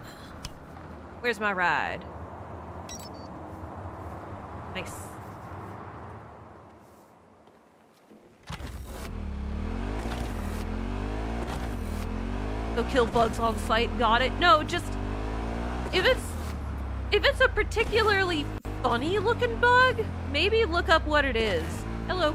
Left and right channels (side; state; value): both; identical; correlation 1.00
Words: Where's my ride? Nice. Go kill bugs on sight. Got it. No, just... If it's a particularly funny looking bug, maybe look up what it is. Hello,